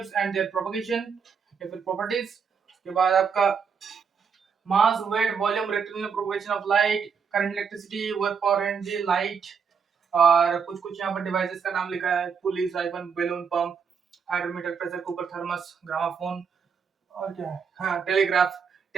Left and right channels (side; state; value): left; quieter; 6.3 dB